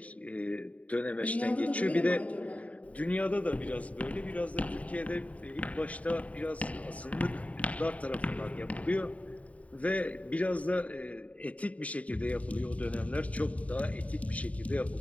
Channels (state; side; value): late; right; 0.068 ms